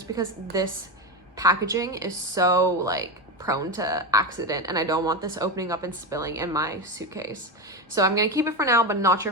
because this packaging is so like prone to accident and I don't want this opening up and spilling in my suitcase. So I'm going to keep it for now, but not sure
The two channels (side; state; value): both; normal; correlation 0.16